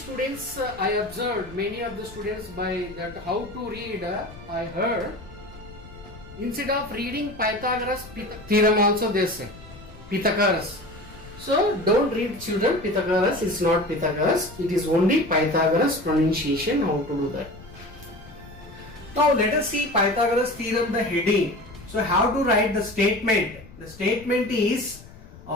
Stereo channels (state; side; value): noise; left; rumble, 19 dB below the sound